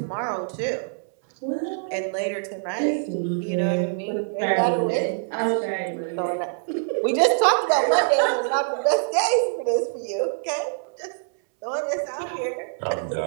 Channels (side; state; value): left; silent; 62 dB below the other